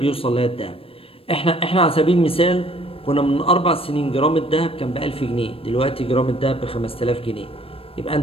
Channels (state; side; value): late; right; 0.27 ms